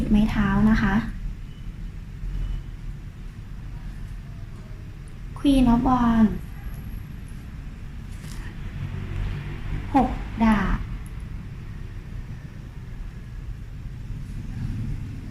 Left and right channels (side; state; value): both; identical; correlation 1.00